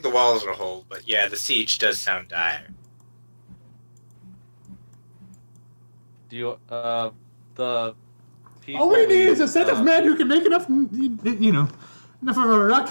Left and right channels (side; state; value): both; inverted; correlation -1.00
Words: the walls will hold, but yeah, the siege does sound dire. Do you, the people... All we need is a set uh, of men who can make enough, enough of a